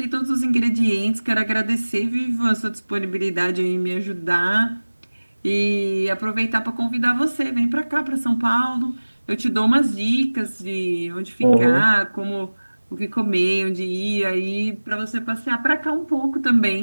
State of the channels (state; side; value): inverted; both; correlation -1.00